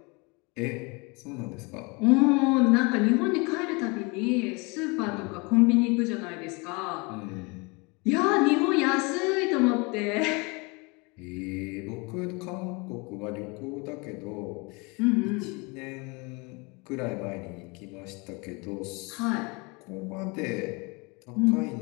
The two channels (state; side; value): quieter; right; 28.4 dB